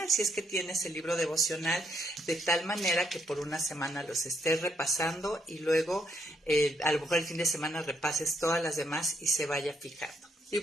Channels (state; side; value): normal; both; correlation 0.75